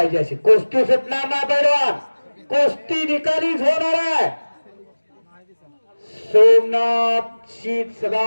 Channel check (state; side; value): inverted; both; correlation -1.00